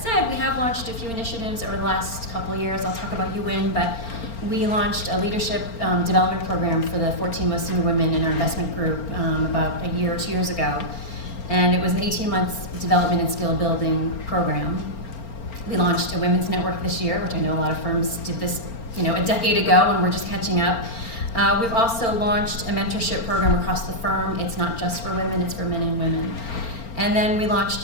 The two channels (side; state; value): right; late; 4.4 ms